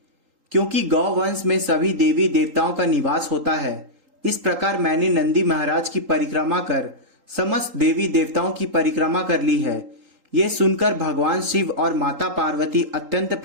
क्योंकि गौवंश में सभी देवी देवताओं का निवास होता है। इस प्रकार मैंने नंदी महाराज की परिक्रमा कर समस्त देवी देवताओं की परिक्रमा कर ली है। ये सुनकर भगवान शिव और माता पार्वती अत्यंत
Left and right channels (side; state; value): left; late; 3.8 ms